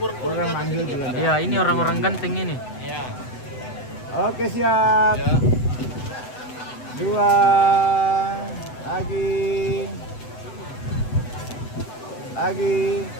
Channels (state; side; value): late; right; 8.0 ms